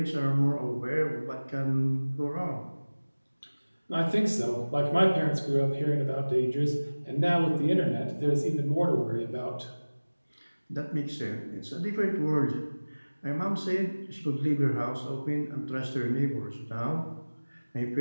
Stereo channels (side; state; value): both; inverted; correlation -1.00